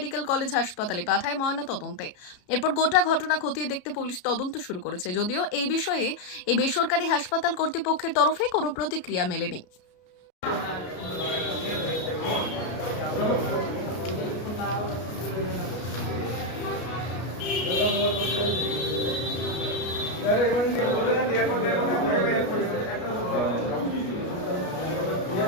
কলেজ হাসপাতালে পাঠায় ময়না তদন্তে। এরপর গোটা ঘটনা খতিয়ে দেখতে পুলিশ তদন্ত শুরু করেছে, যদিও এই বিষয়ে এই বেসরকারি হাসপাতাল কর্তৃপক্ষের তরফে কোনো প্রতিক্রিয়া মেলেনি।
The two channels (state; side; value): late; right; 33 ms